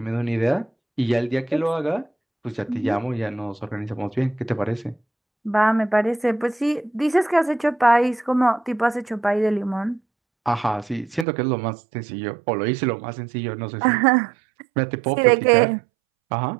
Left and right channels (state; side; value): drops out; left; at 11.2 s